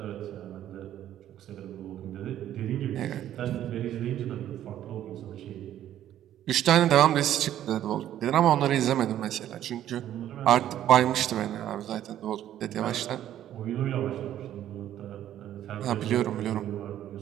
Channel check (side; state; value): left; quieter; 11.7 dB